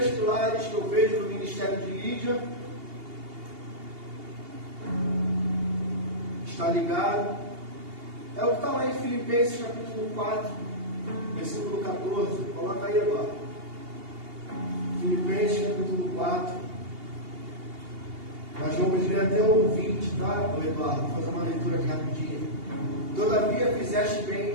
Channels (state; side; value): late; left; 2.8 ms